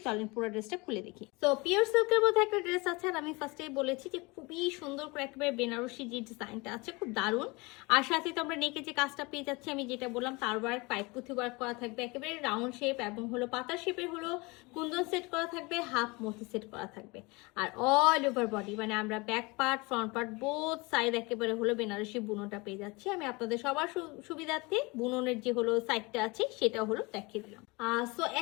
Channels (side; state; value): right; quieter; 25.7 dB